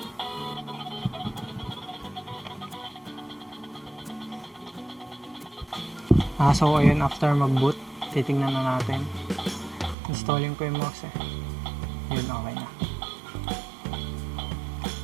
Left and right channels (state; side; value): drops out; left; at 10.0 s